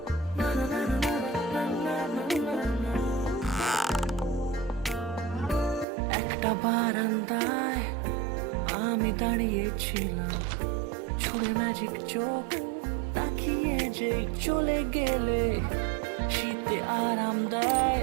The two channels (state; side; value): drops out; left; at 5.9 s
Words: একটা বারান্দায় আমি দাঁড়িয়েছিলাম, ছুড়ে ম্যাজিক চোখ তাকিয়ে যে চলে গেলে শীতে আরাম দেয়